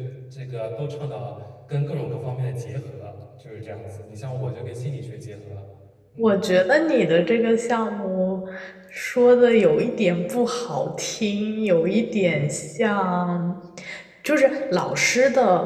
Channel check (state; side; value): identical; both; correlation 1.00